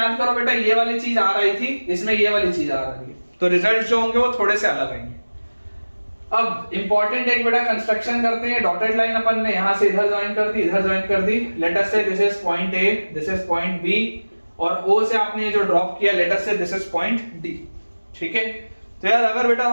करो बेटा, ये वाली चीज आ रही थी, इसमें ये वाली चीज आ रही है, तो रिजल्ट जो होंगे वो थोड़े से अलग आएंगे। अब इंपॉर्टेंट एक बेटा कंस्ट्रक्शन करते हैं। डॉटेड लाइन अपन ने यहां से इधर ज्वाइन कर दी, इधर ज्वाइन कर दी। Let us say this is point A, this is point B, और ओ से आपने जो ड्रॉप किया, late us say this is point D. ठीक है, तो यार अगर बेटा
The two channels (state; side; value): inverted; both; correlation -1.00